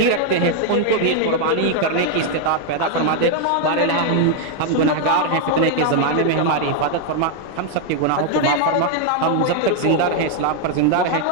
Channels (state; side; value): different; both; correlation 0.00